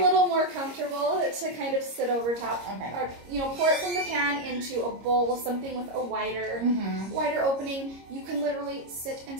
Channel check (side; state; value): left; late; 26 ms